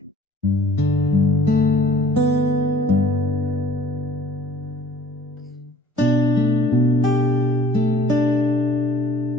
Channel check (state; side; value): normal; both; correlation 0.52